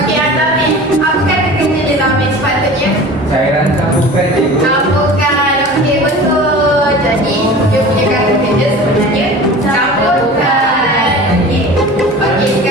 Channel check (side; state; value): both; normal; correlation 0.39